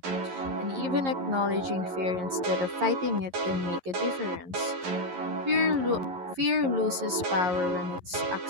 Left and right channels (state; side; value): late; left; 11 ms